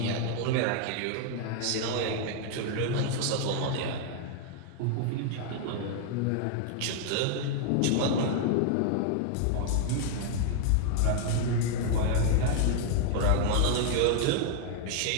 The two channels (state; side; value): different; both; correlation 0.00